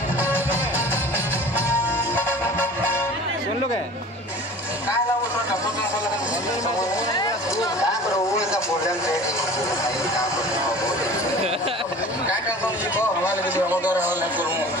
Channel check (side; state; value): both; normal; correlation 0.42